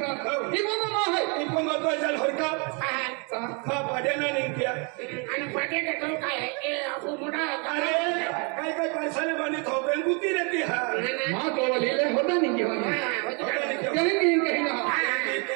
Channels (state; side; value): quieter; left; 34.4 dB